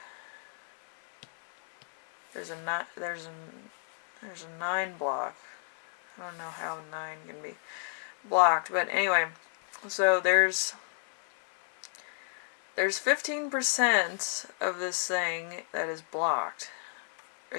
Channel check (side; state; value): right; silent; 57 dB below the other